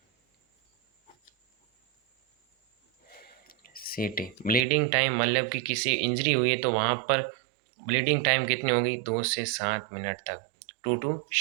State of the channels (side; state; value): left; drops out; at 4.6 s